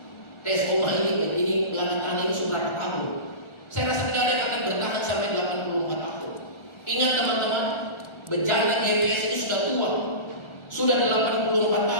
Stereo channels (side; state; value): right; late; 1.4 ms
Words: Tes oma ini belakang ini sudah berapa tahun? Saya rasa tidak ada yang akan bertahan sampai 84 tahun. Ingat teman-teman, bejana GPS ini sudah tua, sudah 84